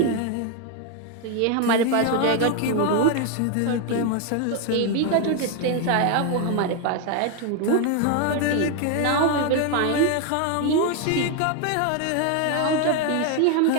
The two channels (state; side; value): different; both; correlation 0.01